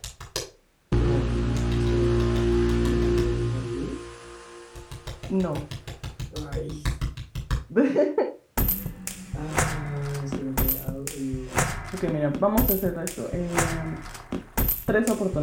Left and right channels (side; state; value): both; identical; correlation 1.00